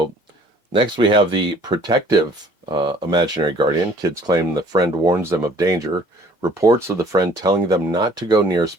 next we have the protective imaginary guardian. Kids claim the friend warns them of danger. Reports of the friend telling them not to go near a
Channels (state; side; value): late; right; 1.2 ms